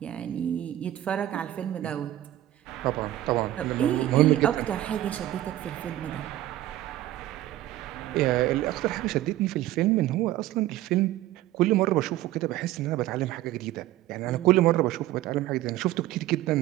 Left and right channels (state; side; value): quieter; left; 14.4 dB